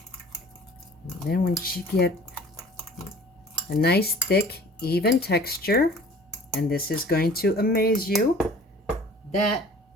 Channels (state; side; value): normal; both; correlation 0.48